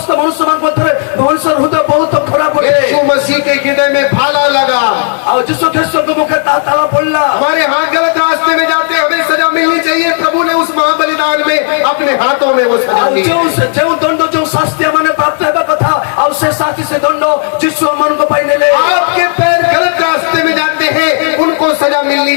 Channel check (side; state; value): right; silent; 64 dB below the other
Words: मनुष्य मान मत रे मनुष्य हृदय बहुत खराब है। यीशु मसीह के हृदय में भाला लगा। और यीशु ख्रीष्ट को मुख ताला पड़ला। हमारे हाथ गलत रास्ते में जाते हमें सजा मिलनी चाहिए। प्रभु ने उस महाबलिदान में अपने हाथों में वो सजा दी। जो दंड जो शास्ति माने प्राप्त हेबा कथा और से शास्ति से दंड यीशु मन को पाई नेले। आपके पैर गलत रास्ते में जाते हैं, उनको सजा मिलनी